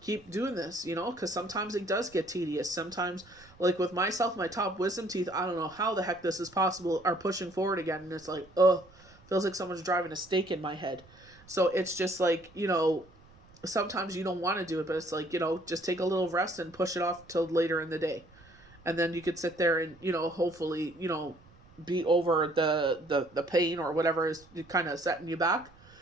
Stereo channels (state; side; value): noise; right; rumble, 26 dB below the sound